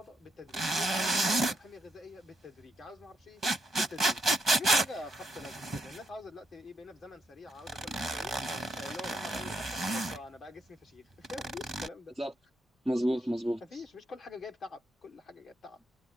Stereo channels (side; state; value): both; normal; correlation 0.78